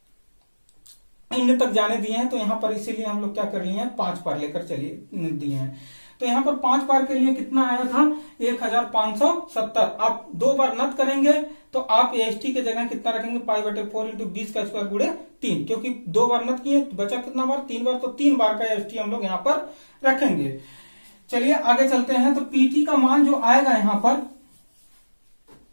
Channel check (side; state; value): both; inverted; correlation -1.00